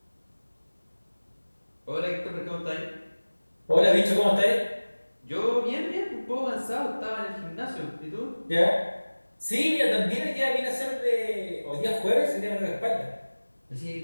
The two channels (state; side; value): inverted; both; correlation -1.00